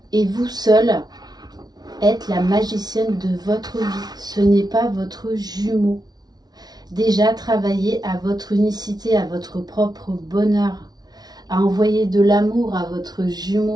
Et vous seul êtes la magicienne de votre vie, ce n'est pas votre jumeau. Déjà, travaillez à votre unicité, à votre propre bonheur, à envoyer de l'amour à votre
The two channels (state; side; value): late; left; 0.19 ms